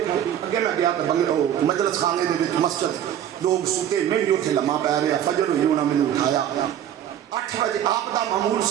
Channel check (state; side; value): quieter; left; 10.5 dB